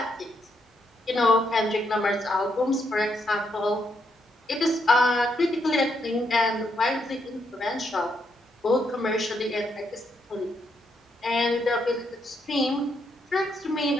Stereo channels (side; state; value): both; normal; correlation 0.77